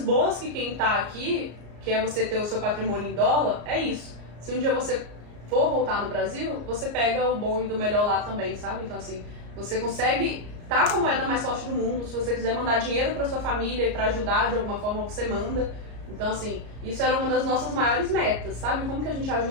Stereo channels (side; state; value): left; late; 34 ms